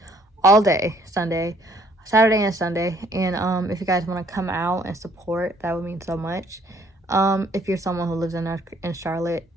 all day Saturday and Sunday. And if you guys want to come out and support, that would mean so much. If you're someone who lives in Charlotte.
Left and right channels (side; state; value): both; normal; correlation 0.63